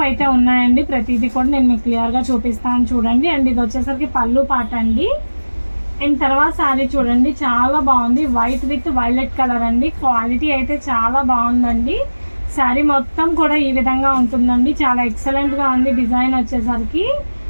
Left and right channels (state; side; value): inverted; both; correlation -1.00